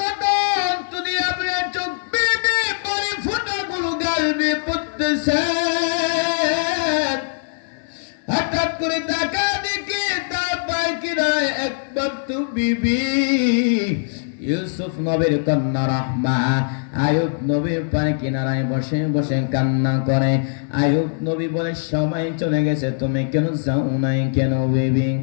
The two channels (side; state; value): right; silent; digital silence